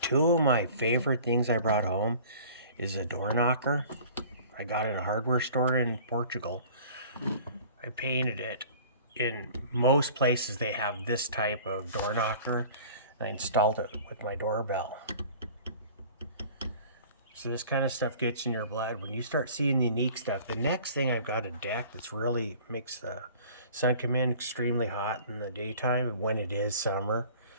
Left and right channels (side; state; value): both; inverted; correlation -0.47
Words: two of my favorite things I brought home is a door knocker. I got it in a hardware store in Portugal. I painted it. In most places they have this type of door knocker. And I installed it with my doorbell. So this kind of stuff gets in your blood. When you start seeing the unique stuff, the next thing I've got a deck that's really makes the sun come in extremely hot in the daytime when it is summer.